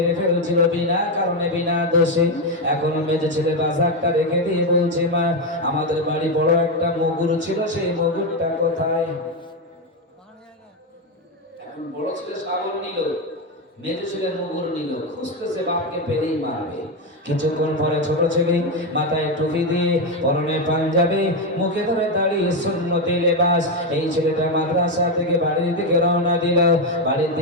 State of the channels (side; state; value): both; normal; correlation 0.08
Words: ফেলছিল বিনা কারণে, বিনা দোষে। এখন মেজো ছেলে বাজারটা রেখে দিয়ে বলছে মা আমাদের বাড়ি বড় একটা মগুর ছিল, সেই মগুরটা কোথায়? এখন বড় ছেলে শাবল নিল, মেজো ছেলে মগুর নিল, খুঁজতেছে বাপকে পেলেই মারবে। কিছুক্ষণ পরে ছোট ছেলে মাথায় টুপি দিয়ে, পরনে পাঞ্জাবি, মুখে ধরে দাঁড়িয়ে সুন্নতি লেবাস, এই ছেলেটা মাদ্রাসা থেকে বাড়ির দিকে রওনা দিল। বাড়ির